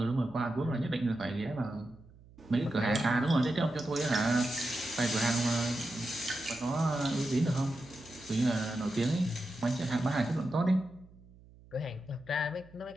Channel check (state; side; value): noise; right; hum, 24 dB below the sound